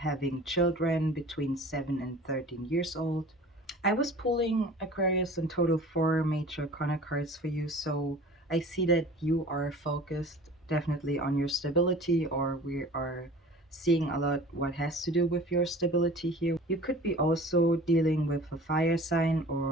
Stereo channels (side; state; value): both; normal; correlation 0.43